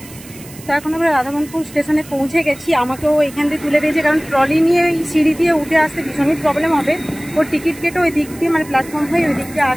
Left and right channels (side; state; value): right; noise; hiss, 19 dB below the sound